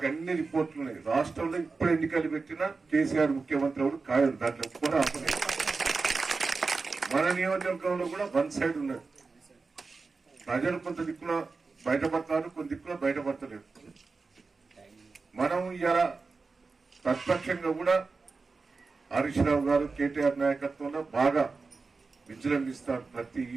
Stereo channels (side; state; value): left; quieter; 4.2 dB